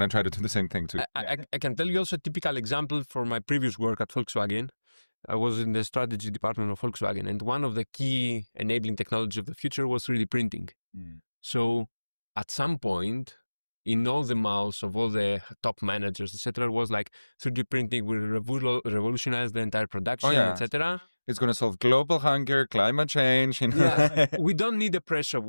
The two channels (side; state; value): both; inverted; correlation -1.00